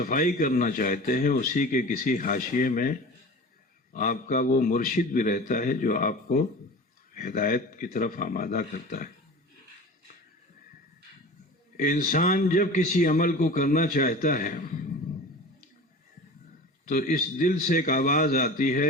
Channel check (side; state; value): both; normal; correlation 0.36